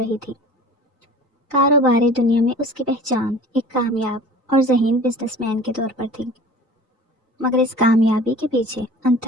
تھی۔ کاروباری دنیا میں اس کی پہچان ایک کامیاب اور ذہین بزنس مین کے طور پر تھی، مگر اس کامیابی کے پیچھے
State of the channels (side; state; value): both; normal; correlation 0.42